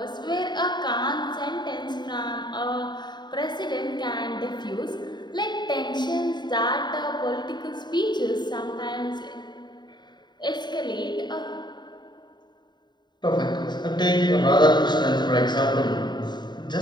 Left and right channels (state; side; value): late; right; 0.21 ms